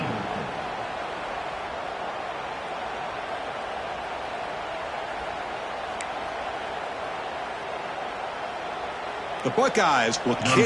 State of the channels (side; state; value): both; identical; correlation 1.00